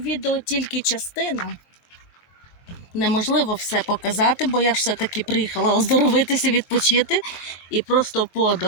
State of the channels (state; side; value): late; right; 23 ms